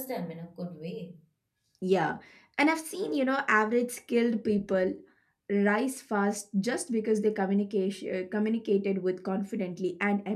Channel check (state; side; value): identical; both; correlation 1.00